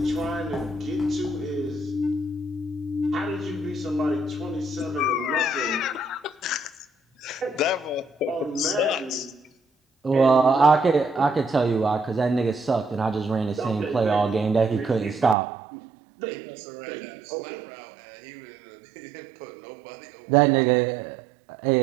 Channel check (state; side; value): drops out; left; at 15.4 s